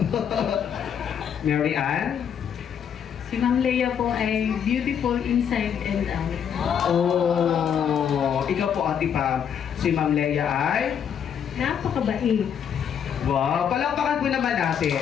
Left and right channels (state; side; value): quieter; right; 8.2 dB